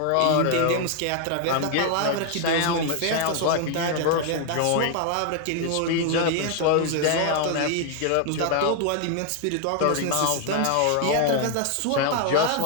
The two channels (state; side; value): different; both; correlation 0.00